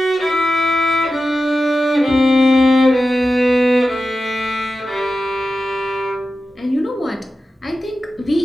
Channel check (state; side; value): normal; both; correlation 0.92